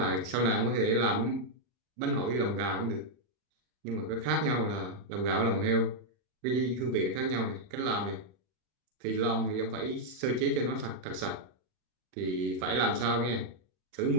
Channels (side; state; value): left; late; 40 ms